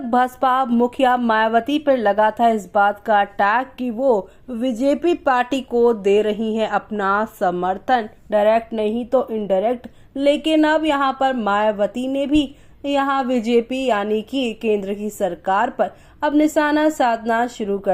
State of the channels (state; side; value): identical; both; correlation 1.00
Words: बसपा मुखिया मायावती पर लगा था इस बात का टैग कि वो बीजेपी पार्टी को दे रही हैं अपना समर्थन, डायरेक्ट नहीं तो इनडायरेक्ट। लेकिन अब यहां पर मायावती ने भी यहां बीजेपी यानी कि केंद्र की सरकार पर अब निशाना साधना शुरू